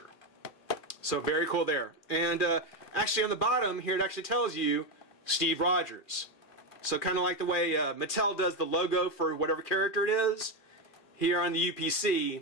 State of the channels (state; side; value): late; right; 2.5 ms